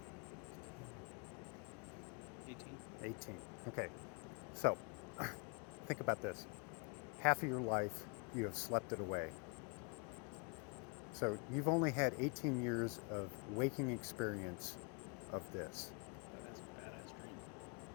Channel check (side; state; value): right; quieter; 32.2 dB